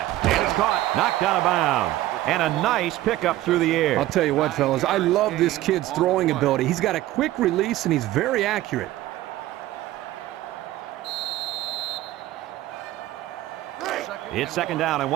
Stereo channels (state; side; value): quieter; left; 15.4 dB